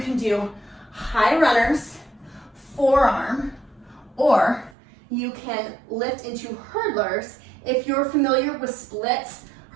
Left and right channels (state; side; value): drops out; left; at 4.8 s